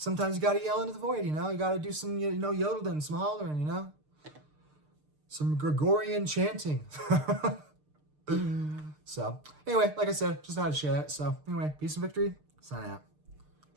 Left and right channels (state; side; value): late; left; 6.6 ms